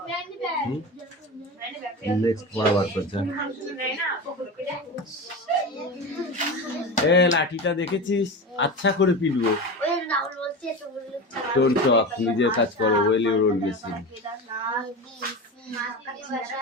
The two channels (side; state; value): both; normal; correlation 0.26